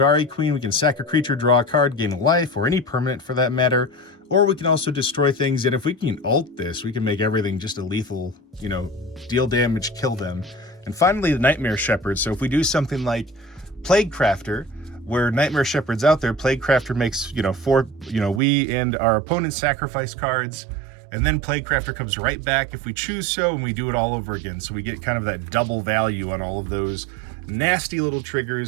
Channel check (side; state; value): left; drops out; at 18.4 s